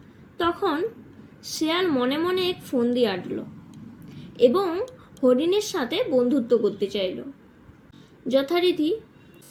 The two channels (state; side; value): identical; both; correlation 1.00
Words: তখন শিয়াল মনে মনে এক ফন্দি আঁটল এবং হরিণের সাথে বন্ধুত্ব করতে চাইল। যথারীতি